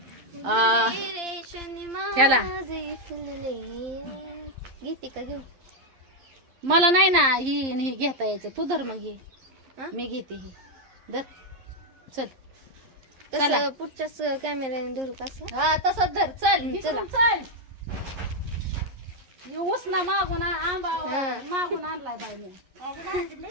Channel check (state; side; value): late; left; 11 ms